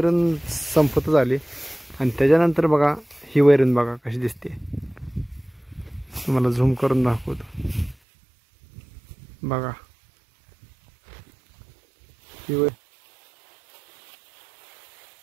संपत झाली आणि त्याच्यानंतर बघा ही वैरण बघा कशी दिसते. तुम्हाला झूम करून दाखवतो बघा. ही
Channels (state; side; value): drops out; left; at 8.0 s